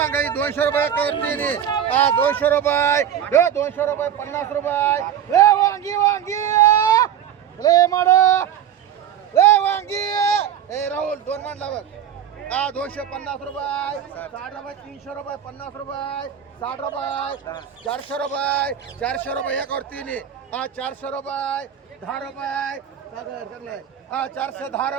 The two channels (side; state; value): left; quieter; 9.5 dB